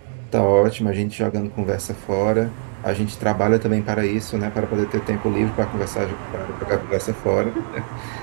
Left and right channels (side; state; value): left; silent; 58 dB below the other